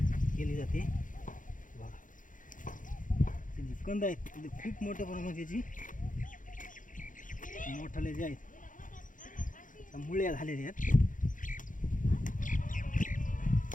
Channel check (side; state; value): right; late; 0.38 ms